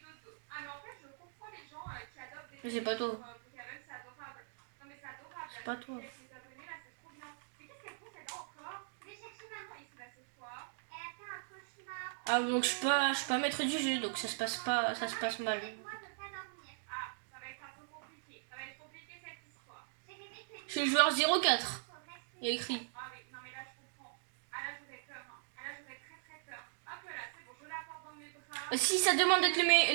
C'est pas toi. C'est pas toi. Ah donc je suis pas maître du jeu, donc ça se passe mal. Je suis le joueur 04. Il y a écrit. Si ça demande d'être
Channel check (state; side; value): silent; left; digital silence